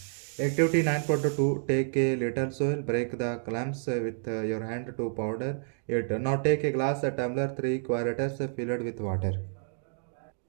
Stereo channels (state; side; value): silent; left; digital silence